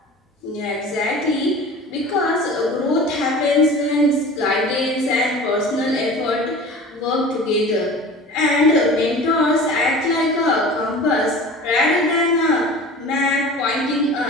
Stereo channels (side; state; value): both; normal; correlation 0.38